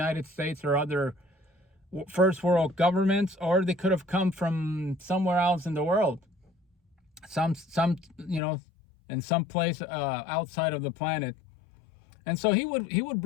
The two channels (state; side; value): drops out; right; at 8.4 s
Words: States or other first world governments, or they could have come from somewhere else in the world. Some in some place outside of the planet. And so he would